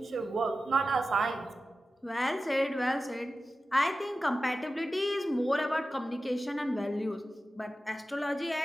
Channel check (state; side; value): normal; both; correlation 0.93